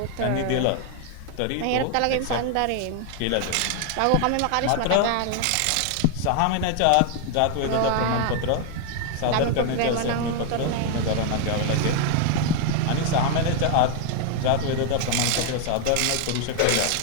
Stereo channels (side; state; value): both; different; correlation 0.00